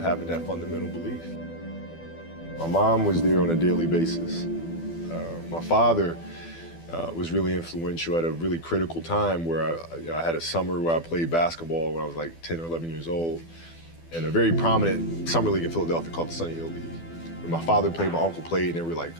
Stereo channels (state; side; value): late; right; 12 ms